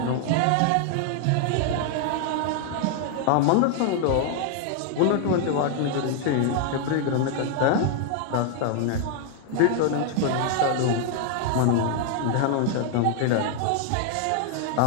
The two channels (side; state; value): both; different; correlation 0.00